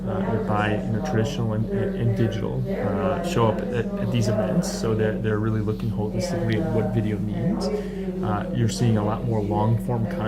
that buy traditional and digital show up at these events, so they're really looking holistically at what video means. You're seeing a lot more long-form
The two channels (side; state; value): both; identical; correlation 1.00